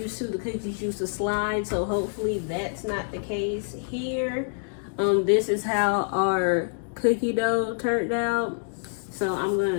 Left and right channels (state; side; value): silent; right; digital silence